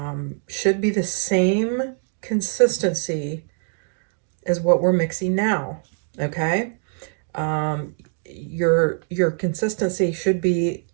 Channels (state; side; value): silent; left; 57 dB below the other